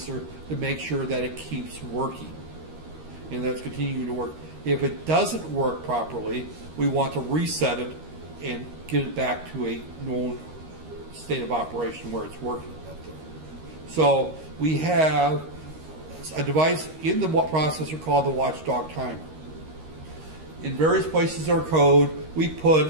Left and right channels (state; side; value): late; left; 13 ms